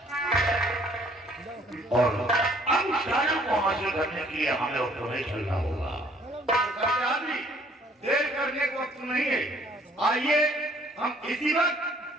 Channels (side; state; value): both; normal; correlation 0.60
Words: और अब उस राजा को हासिल करने के लिए हमें और तुम्हें चलना होगा। देर करने को वक्त नहीं है, आइए हम इसी वक्त